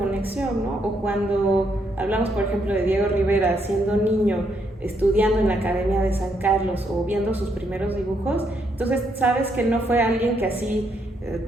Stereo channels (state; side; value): normal; both; correlation 0.75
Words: ¿no? O cuando hablamos, por ejemplo, de Diego Rivera siendo niño, estudiando en la Academia de San Carlos o viendo sus primeros dibujos, entonces sabes que no fue alguien que así